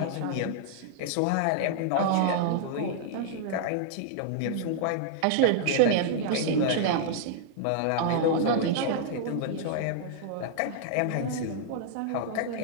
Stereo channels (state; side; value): different; both; correlation -0.01